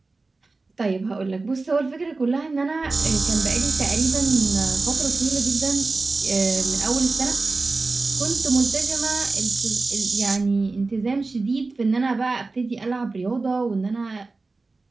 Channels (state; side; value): quieter; left; 3.6 dB